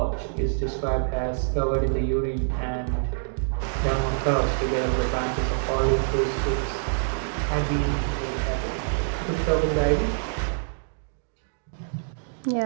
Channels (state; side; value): silent; left; digital silence